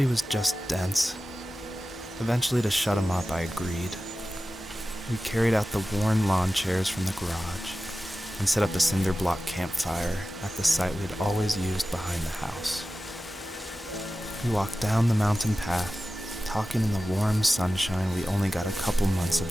he was just dense. Eventually, to shut him up, I agreed. We carried out the worn lawn chairs from the garage and set up a cinder block campfire at the site we'd always used behind the house. We walked down the mountain path, talking in the warm sunshine we only got a couple months of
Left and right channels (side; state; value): both; normal; correlation 0.95